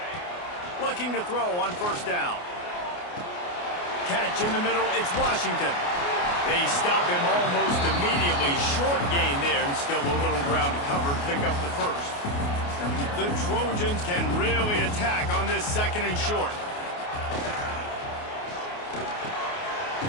Looking to throw on first down. Catch in the middle, it's Washington. They stop him almost immediately. Short gain there, and still a little ground to cover to pick up the first. The Trojans can really attack on this second and short.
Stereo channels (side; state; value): right; late; 28 ms